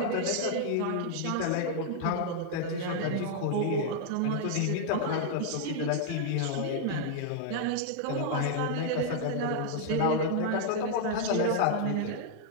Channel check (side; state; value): both; different; correlation 0.00